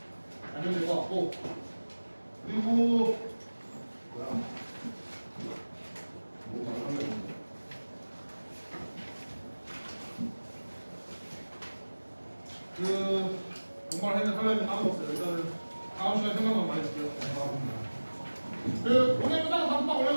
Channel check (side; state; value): both; inverted; correlation -1.00